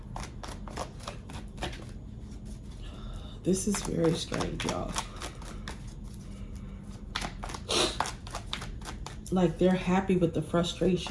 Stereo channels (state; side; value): identical; both; correlation 1.00